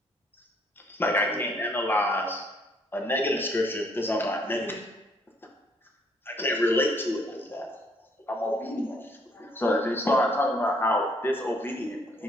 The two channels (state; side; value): normal; both; correlation 0.66